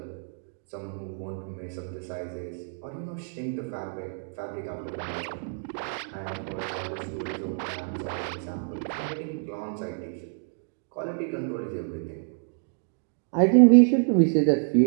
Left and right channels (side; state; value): left; silent; 59 dB below the other